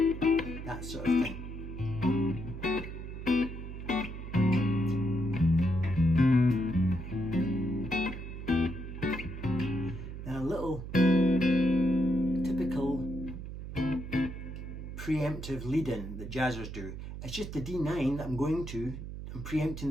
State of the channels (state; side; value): noise; right; hum, 9 dB below the sound